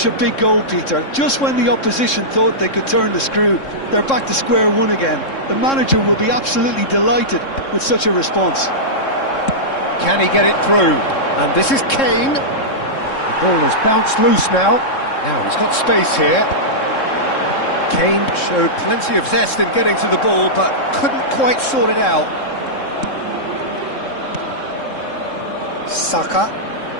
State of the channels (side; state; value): right; late; 3.7 ms